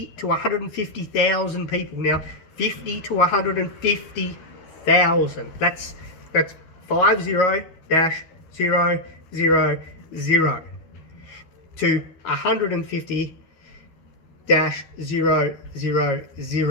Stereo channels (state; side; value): late; right; 13 ms